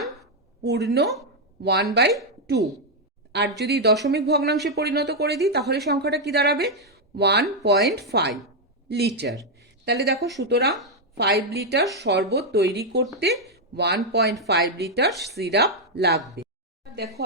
পূর্ণ 1/2। আর যদি দশমিক ভগ্নাংশে পরিণত করে দিই, তাহলে সংখ্যাটা কি দাঁড়াবে? 1.5 লিটার। তাহলে দেখো, সুতরাং 5 লিটার শরবত তৈরি করতে 1.5 লিটার সিরাপ লাগবে। দেখো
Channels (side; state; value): both; normal; correlation 0.01